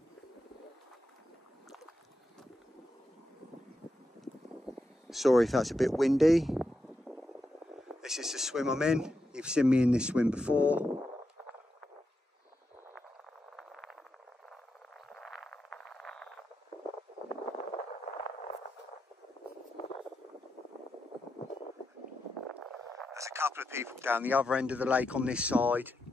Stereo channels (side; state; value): both; normal; correlation 0.86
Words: Sorry if that's a bit windy. This is the swim I'm in. You've seen me in this swim before. There's a couple of people down the other end of the lake on this side,